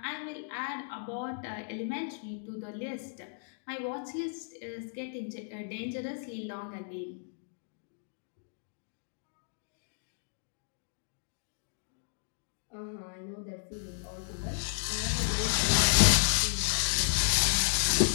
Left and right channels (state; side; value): silent; right; digital silence